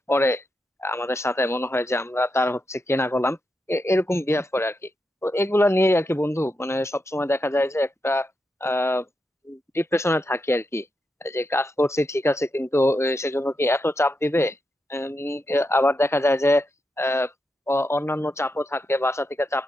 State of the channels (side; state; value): both; normal; correlation 0.85